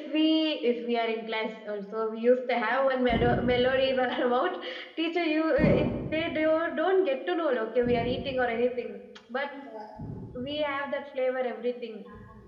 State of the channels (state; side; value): identical; both; correlation 1.00